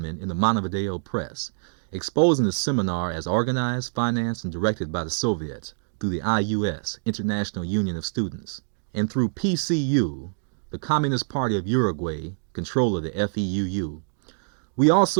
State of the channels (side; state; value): left; silent; digital silence